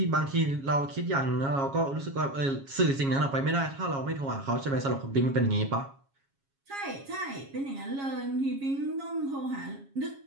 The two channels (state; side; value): late; left; 7.3 ms